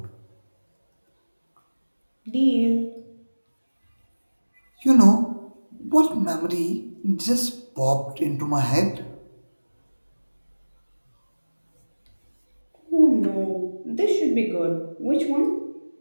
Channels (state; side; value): inverted; both; correlation -1.00